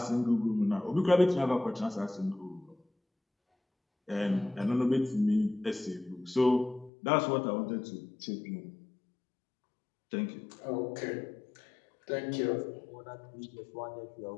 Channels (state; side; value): drops out; right; at 6.9 s